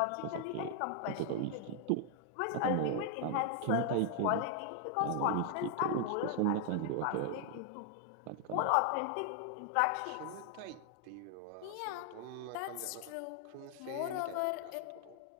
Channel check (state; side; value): different; both; correlation 0.00